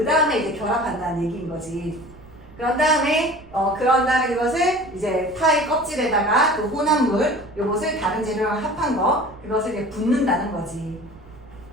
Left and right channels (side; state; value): right; noise; rumble, 22 dB below the sound